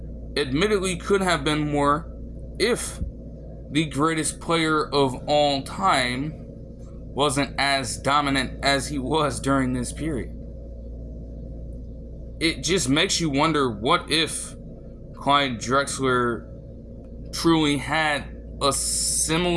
admittedly could have been more if the greatest player of all time wasn't as dominant as he was during this period. It just makes you wonder, what if Clyde Drexler truly had a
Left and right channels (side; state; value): both; identical; correlation 1.00